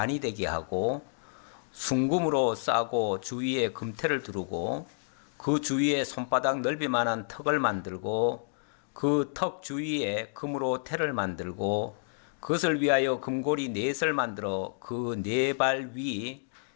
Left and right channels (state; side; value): silent; right; digital silence